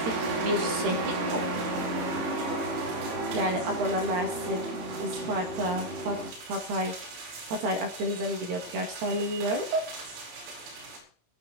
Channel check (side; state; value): left; late; 18 ms